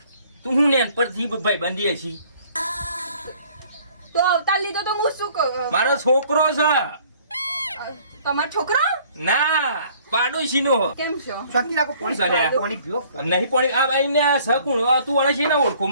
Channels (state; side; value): inverted; both; correlation -0.57